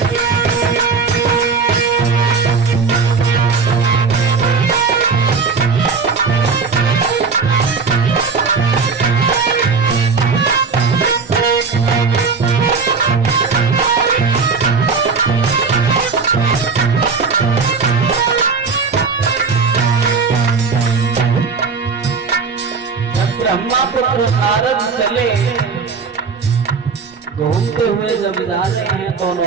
पुत्र नारद चले, घूमते हुए जब जा रहे हैं तो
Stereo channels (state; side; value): quieter; left; 5.0 dB